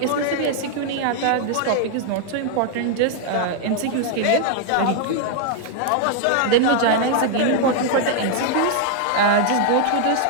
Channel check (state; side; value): different; both; correlation 0.00